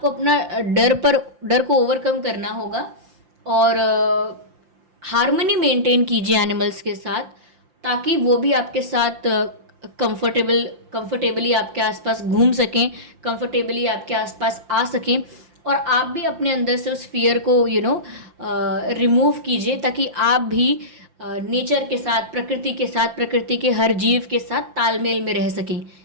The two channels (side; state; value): left; late; 5.7 ms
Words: अपना डर को ओवरकम करना होगा और हार्मनी मेंटेन कीजिए एनिमल्स के साथ, ताकि वो भी आपके साथ कंफर्टेबली आपके आसपास घूम सकें, कंफर्टेबली आपके आसपास आ सकें और आप भी अपने अंदर से उस फियर को रिमूव कीजिए, ताकि आप भी नेचर के साथ, प्रकृति के साथ, प्रकृति के हर जीव के साथ तालमेल में रह सकें।